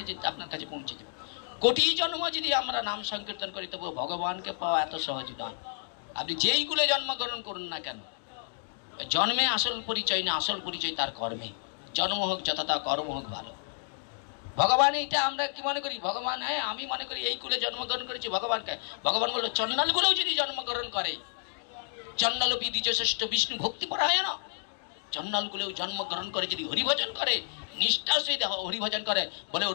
যে আপনার কাছে পৌঁছে যাবে। কোটি জন্ম যদি আমরা নাম সংকীর্তন করি, তবু ভগবানকে পাওয়া এত সহজ নয়। আপনি যেই কুলে জন্মগ্রহণ করুন না কেন, জন্মে আসল পরিচয় না, আসল পরিচয় তার কর্মে। জন্ম হোক যথাতা, কর্ম হোক ভালো। ভগবান এইটা আমরা কি মনে করি? ভগবান, হ্যাঁ আমি মনে করি এই কুলে জন্মগ্রহণ করেছি ভগবানকে। ভগবান বললো, চন্ডাল গুলোও যদি জন্মগ্রহণ করে, চন্ডাল দ্বিজ শ্রেষ্ঠ বিষ্ণু ভক্তি পরায়ণ, চন্ডাল গুলোও জন্মগ্রহণ করে যদি হরিভজন করে, নিষ্ঠার সহিত হরিভজন করে, বলে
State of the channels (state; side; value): silent; right; digital silence